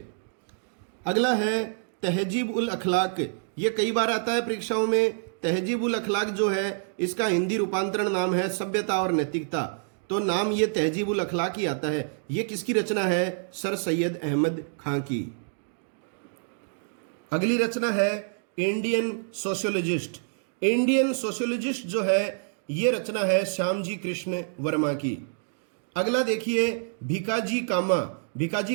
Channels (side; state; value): left; silent; digital silence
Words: अगला है तहजीब उल अखलाक, ये कई बार आता है परीक्षाओं में। तहजीबुल अखलाक जो है इसका हिंदी रूपांतरण नाम है सभ्यता और नैतिकता, तो नाम ये तहजीबुल अखलाक ही आता है। ये किसकी रचना है? सर सैयद अहमद खां की। अगली रचना है इंडियन सोशियोलॉजिस्ट। इंडियन सोशियोलॉजिस्ट जो है ये रचना है श्यामजी कृष्ण वर्मा की। अगला देखिए भिकाजी कामा। भिकाजी